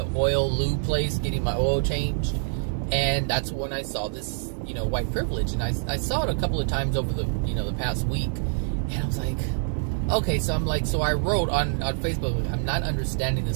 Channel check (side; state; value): left; silent; 61 dB below the other